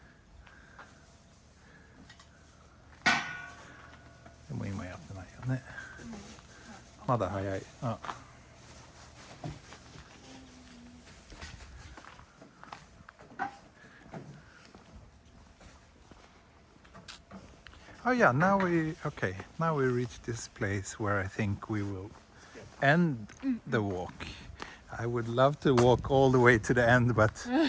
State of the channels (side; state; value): both; identical; correlation 1.00